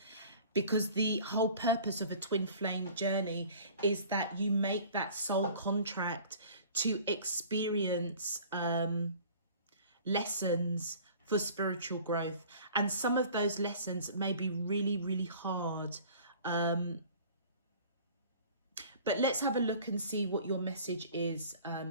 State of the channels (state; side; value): inverted; both; correlation -0.47